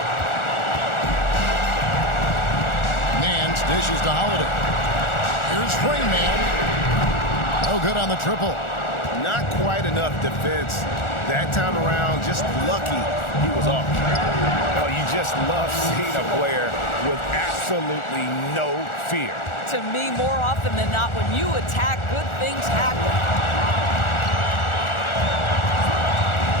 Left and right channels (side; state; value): right; late; 1.4 ms